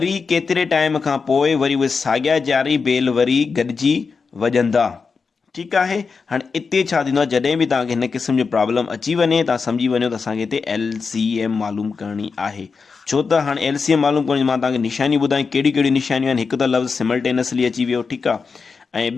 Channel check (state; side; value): quieter; right; 5.0 dB